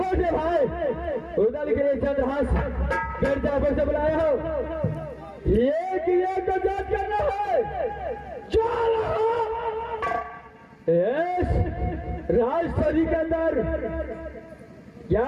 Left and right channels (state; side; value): identical; both; correlation 1.00